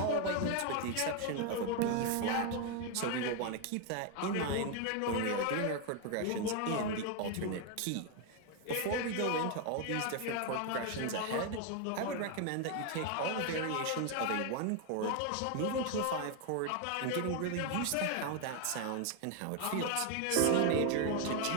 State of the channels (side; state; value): both; different; correlation 0.01